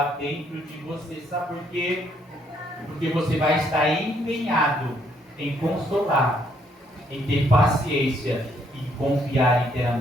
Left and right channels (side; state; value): both; normal; correlation 0.70